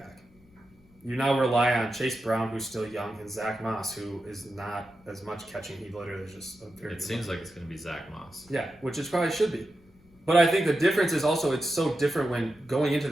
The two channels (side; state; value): left; noise; rumble, 29 dB below the sound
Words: you now rely on Chase Brown, who's still young, and Zach Moss, who is not as much catching. He literally is just a very... It seems like it's going to be Zach Moss. Yeah, which it probably should be. But I think the difference is also it's so different when going into